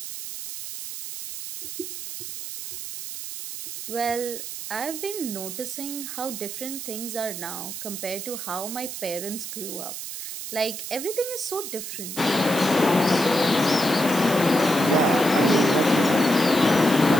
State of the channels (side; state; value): right; noise; hiss, 8 dB below the sound